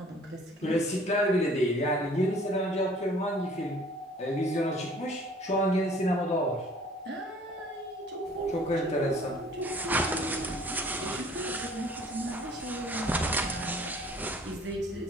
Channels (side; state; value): both; normal; correlation 0.53